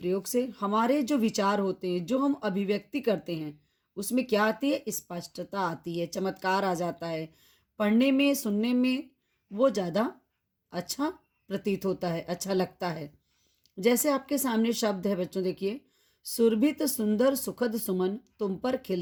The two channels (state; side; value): identical; both; correlation 1.00